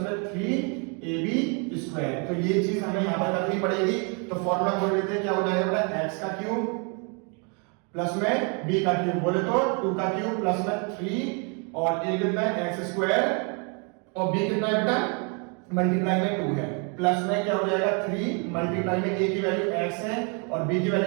3ab²। तो ये चीज हमें यहाँ पर करनी पड़ेगी। तो फॉर्मूला खोल लेते हैं, क्या हो जाएगा बेटा, x का क्यूब प्लस में b का क्यूब, बोले तो 2 का क्यूब प्लस में 3 और a कितना है x स्क्वायर और b कितना है बेटा मल्टीप्लाई में 2 है, प्लस में क्या हो जाएगा 3 मल्टीप्लाई में a की वैल्यू x है और b की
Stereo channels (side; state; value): left; quieter; 35.8 dB